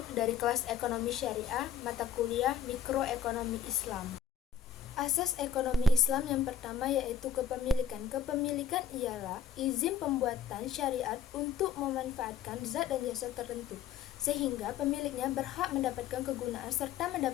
dari kelas Ekonomi Syariah, mata kuliah Mikroekonomi Islam. Asas ekonomi Islam yang pertama yaitu kepemilikan. Kepemilikan ialah izin pembuatan syariat untuk memanfaatkan zat dan jasa tertentu, sehingga pemiliknya berhak mendapatkan kegunaan serta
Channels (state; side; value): quieter; right; 7.8 dB